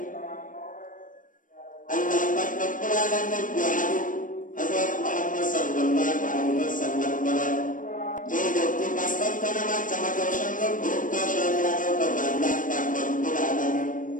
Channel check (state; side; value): late; right; 0.38 ms